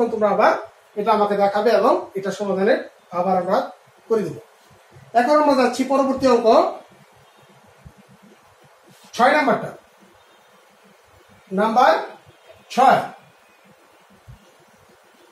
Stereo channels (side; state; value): both; identical; correlation 1.00